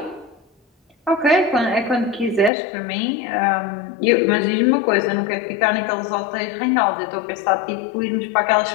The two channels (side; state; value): right; drops out; at 2.5 s